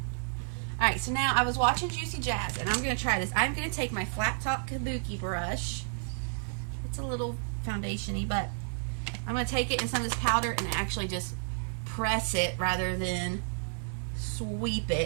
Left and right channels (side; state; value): left; silent; digital silence